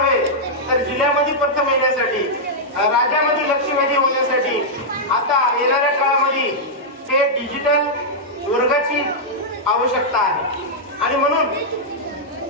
तर जिल्ह्यामध्ये प्रथम येण्यासाठी, राज्यामध्ये लक्षवेधी होण्यासाठी आता येणाऱ्या काळामध्ये ते डिजिटल वर्गाची आवश्यकता आहे आणि म्हणून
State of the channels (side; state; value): both; normal; correlation -0.07